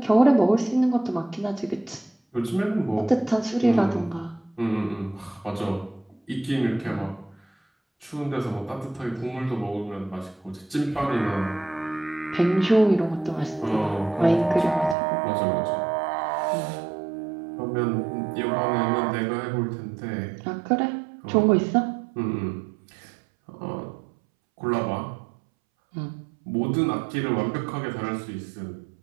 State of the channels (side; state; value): left; drops out; at 15.0 s